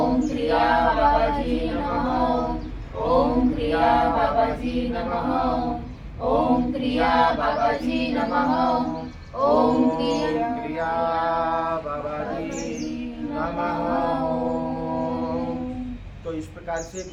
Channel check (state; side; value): identical; both; correlation 1.00